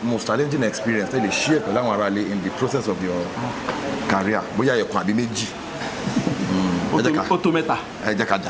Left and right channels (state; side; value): identical; both; correlation 1.00